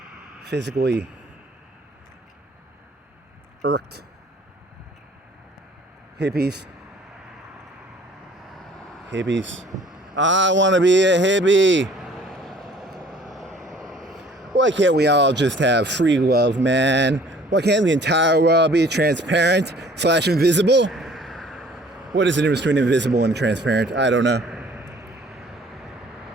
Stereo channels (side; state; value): both; normal; correlation 0.53